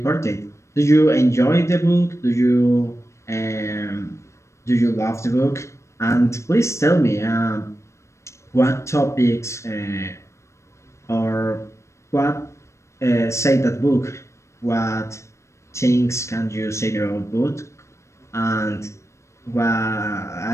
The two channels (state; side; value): late; right; 0.14 ms